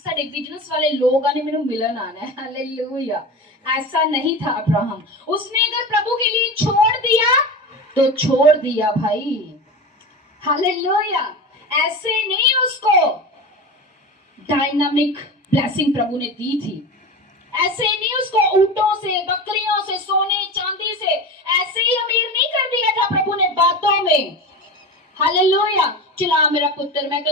बिजनेस वाले लोग आने, मेनू मिलन आना है। हालेलुया। ऐसा नहीं था अब्राहम। उसने अगर प्रभु के लिए छोड़ दिया तो छोड़ दिया भाई। हालेलुया। ऐसे नहीं उसको डायनामिक ब्लेसिंग प्रभु ने दी थी। ऐसे नहीं उसको ऊंटों से, बकरियों से, सोने चांदी से ऐसे ही अमीर नहीं कर दिया था प्रभु ने बातों में। हालेलुया। चला मेरा पुत्र, मैं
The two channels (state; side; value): normal; both; correlation 0.27